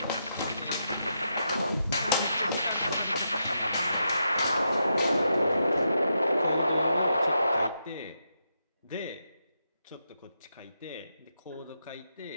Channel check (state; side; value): inverted; both; correlation -0.84